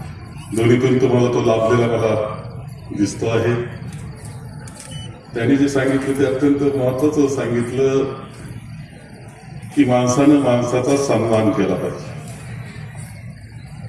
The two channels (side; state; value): both; identical; correlation 1.00